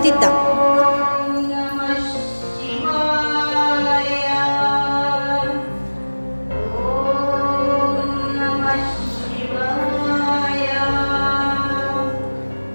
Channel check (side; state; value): both; inverted; correlation -1.00